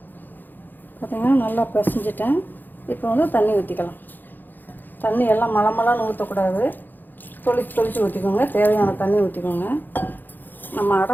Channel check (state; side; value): late; right; 0.089 ms